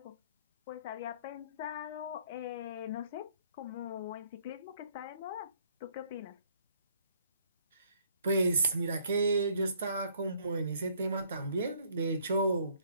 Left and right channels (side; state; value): both; inverted; correlation -0.63